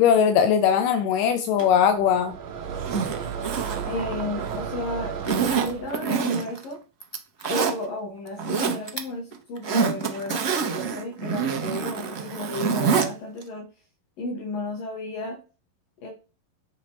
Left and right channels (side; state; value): right; late; 11 ms